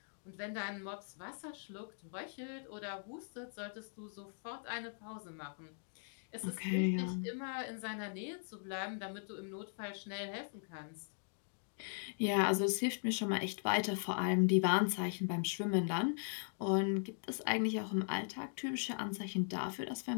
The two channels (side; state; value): right; silent; digital silence